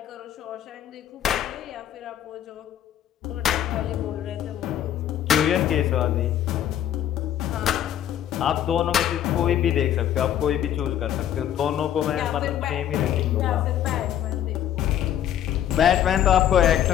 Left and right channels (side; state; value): right; quieter; 10.8 dB